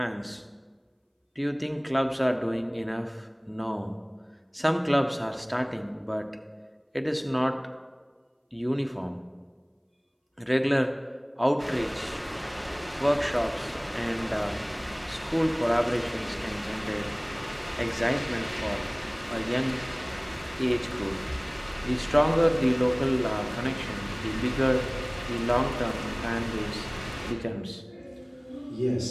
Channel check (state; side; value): identical; both; correlation 1.00